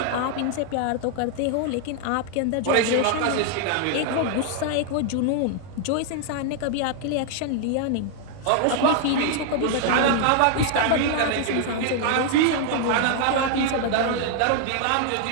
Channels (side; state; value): both; different; correlation 0.00